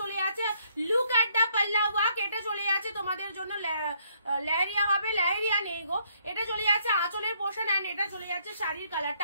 চলে যাচ্ছে, লুক এট দা পাল্লা ওয়ার্ক, এটা চলে যাচ্ছে তোমাদের জন্য লেহেরিয়া হবে, লেহেরিয়া নেই গো, এটা চলে যাচ্ছে আঁচলের পোর্শন এন্ড এটা চলে যাচ্ছে শাড়ির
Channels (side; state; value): both; inverted; correlation -0.69